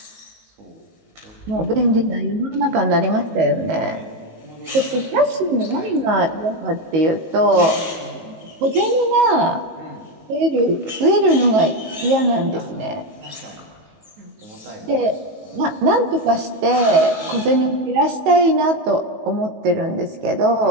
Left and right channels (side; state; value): left; late; 19 ms